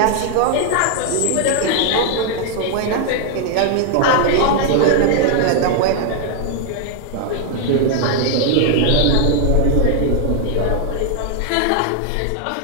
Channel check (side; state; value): both; different; correlation 0.00